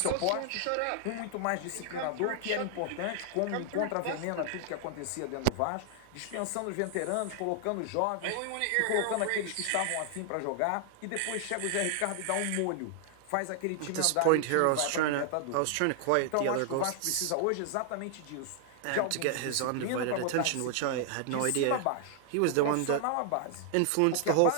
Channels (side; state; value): both; different; correlation 0.00